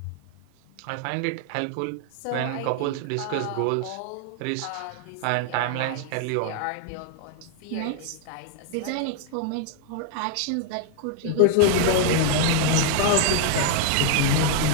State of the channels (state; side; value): different; both; correlation 0.00